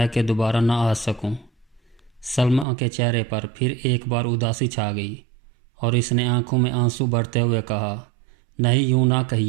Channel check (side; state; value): left; drops out; at 2.7 s